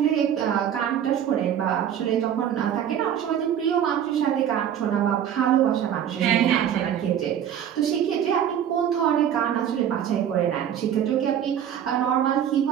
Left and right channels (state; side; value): quieter; left; 9.6 dB